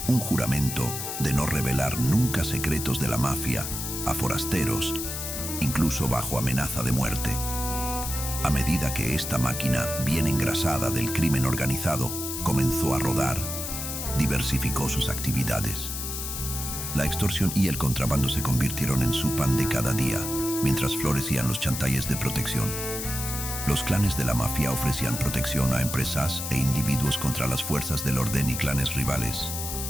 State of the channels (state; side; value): noise; left; hiss, 5 dB below the sound